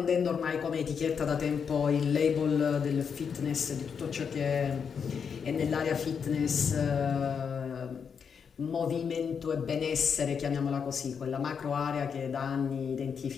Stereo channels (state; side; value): quieter; right; 6.6 dB